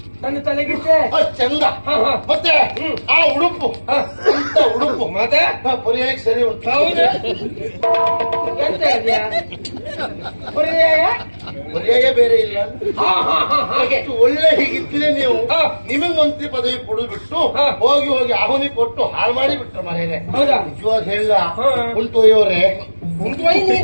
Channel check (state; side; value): inverted; both; correlation -1.00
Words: ನನ್ನ ತಲೆಗಿಟ್ಟೆ ಅಷ್ಟ್ ಚಂದ. ಮತ್ತೆ ಆ ಉಡುಪು ಅಂತ ಉಡುಪು ಮತ್ತೆ ಪರ್ಯಾಯಕ್ಕೆ ಸರಿ ಉಂಟು. ಹೌದು. ಎಂತ ಇದೆಯಾ ಪರ್ಯಾಯ? ಪರ್ಯಾಯ ಬೇರೆ ಇಲ್ಲ. ಅಷ್ಟು ಒಳ್ಳೆ ಹೀಗಿದ್ರೆ ನೀವು ನಿಮಗ್ ಮಂತ್ರಿ ಪದವಿ ಕೊಡುದು ಬಿಟ್ಟು ಹೋಗಿ ಹೋಗಿ ಆಹುನಿ ಕೊಟ್ಟು ಹಾಳು ಮಾಡಿ ಬಿಟ್ರು ಮನೇನೆ. ಹೌದಾ? ನಿಜವಾಗ ಹೇಳ ಉಂಟೊಯ್ಯವರೇ,